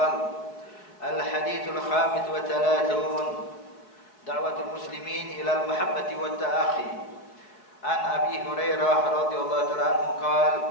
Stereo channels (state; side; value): late; right; 4.6 ms